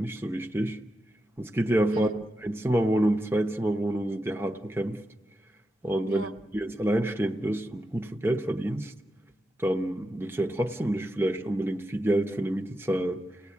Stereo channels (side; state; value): both; normal; correlation 0.88